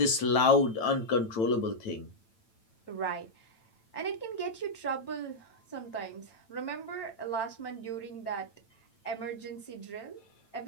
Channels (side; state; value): right; late; 9.0 ms